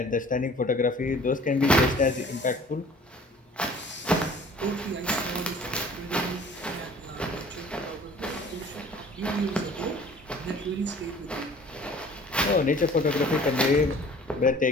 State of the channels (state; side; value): normal; both; correlation 0.49